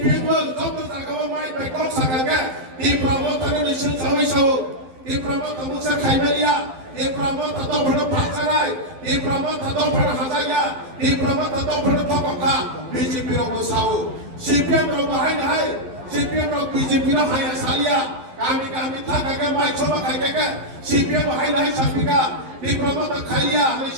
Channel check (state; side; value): late; left; 11 ms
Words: को जब जागाव माइ बेकक सागागे दिप्रामतनि निसिन सौई सौ दिप्रामत मुसा खाइबेलिया दिप्रामत तो भण फासाराय दिप्रामत तो भण हाजाया दिप्रामत तो भण थकका BJP रो साउ CPM रो बाहाय नाय CPM रो BJP रो हाया सालिया kami thakaga mai choma khaikega CPM hai nahi sapika diploma ta khaiya ani